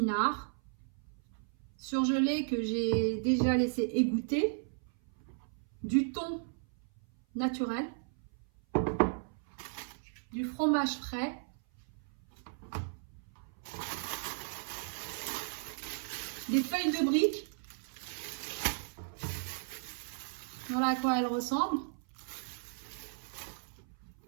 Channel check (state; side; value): silent; left; 54 dB below the other